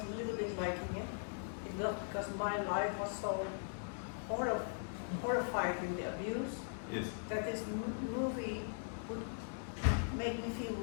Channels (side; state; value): right; silent; digital silence